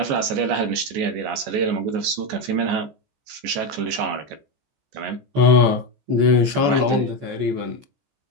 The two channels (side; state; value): left; late; 14 ms